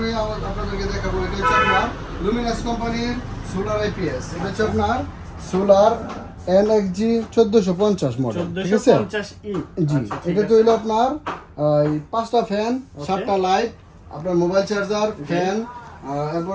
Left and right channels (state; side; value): identical; both; correlation 1.00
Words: আপনাদেরকে দেখাবো, এটা হচ্ছে আপনার লুমিনাস কোম্পানির সোলার আইপিএস। এটা হচ্ছে আপনার সোলার এনএক্সজি 1450 মডেল, ঠিক আছে? 1450E। জি, এটা তো হলো আপনার পাঁচটা ফ্যান, 7টা লাইট, আপনার মোবাইল চার্জার, ফ্যান,